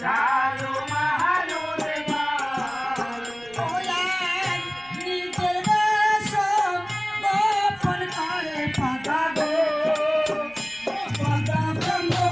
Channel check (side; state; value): right; noise; rumble, 26 dB below the sound